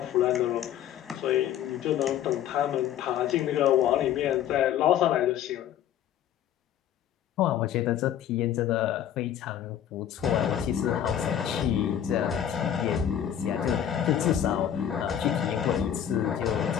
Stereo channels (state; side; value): quieter; right; 10.2 dB